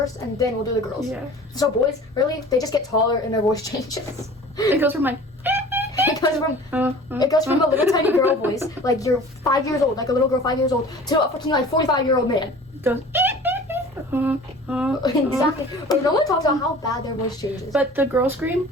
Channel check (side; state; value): both; normal; correlation 0.43